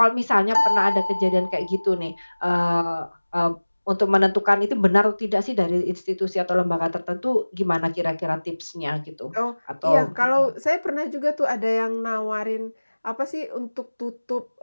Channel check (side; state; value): both; inverted; correlation -1.00